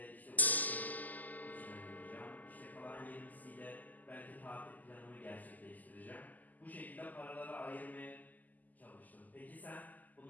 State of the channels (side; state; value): right; late; 0.081 ms